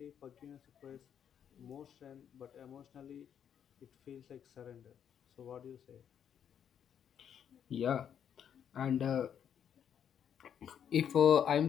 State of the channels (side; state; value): right; quieter; 8.7 dB